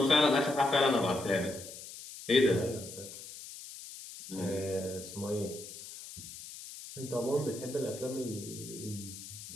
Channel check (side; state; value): left; noise; hiss, 13 dB below the sound